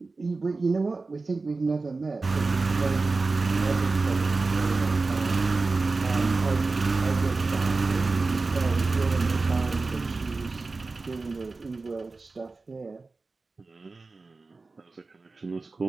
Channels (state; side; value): quieter; left; 3.8 dB